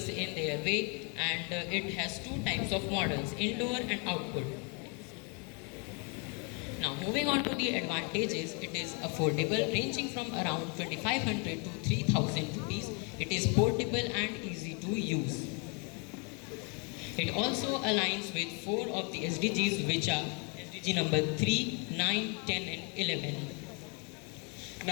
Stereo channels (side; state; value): right; quieter; 34.4 dB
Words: in their way, and it has two types of models, indoor and outdoor. Now, moving on to the advantages, it is affordable, ranging from around 2500 to 3000 rupees. It is portable and easy to use. It also aligns with 4 of the SDGs, which are SDG number 3, 9, 10 and 11.